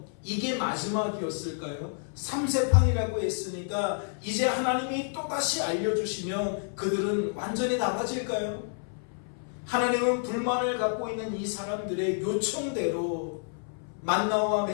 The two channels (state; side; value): silent; right; 58 dB below the other